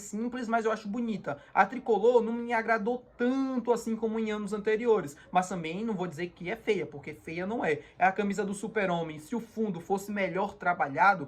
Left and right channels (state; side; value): identical; both; correlation 1.00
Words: mas eu acho bonita. A tricolor não me agradou tanto assim como em anos anteriores, mas também não vou dizer que é feia, porque feia não é. É a camisa do Super-Homem, se o fundo fosse melhor trabalhado,